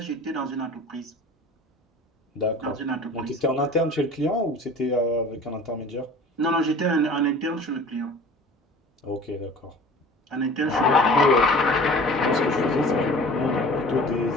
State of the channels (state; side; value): normal; both; correlation 0.43